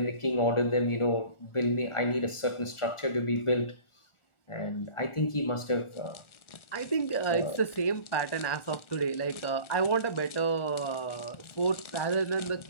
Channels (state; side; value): late; right; 1.4 ms